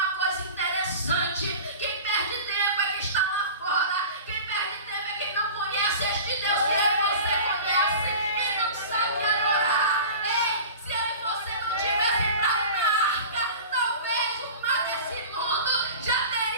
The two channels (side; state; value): both; inverted; correlation -0.37